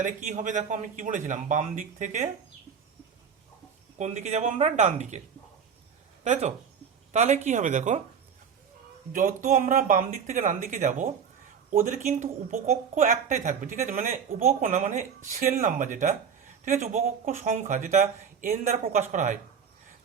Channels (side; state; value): left; quieter; 7.0 dB